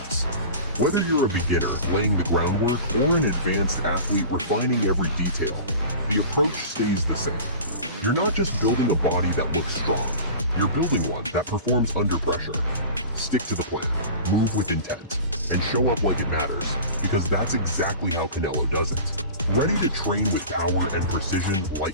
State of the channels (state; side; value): inverted; both; correlation -0.37